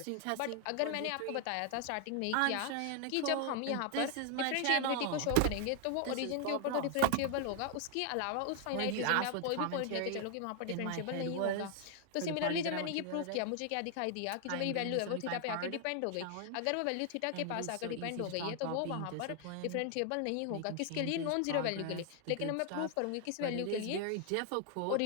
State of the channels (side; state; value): both; different; correlation 0.00